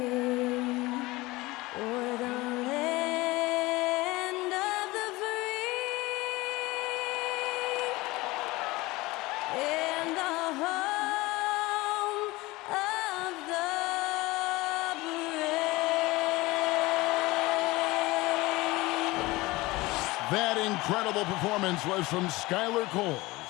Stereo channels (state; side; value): quieter; right; 20.9 dB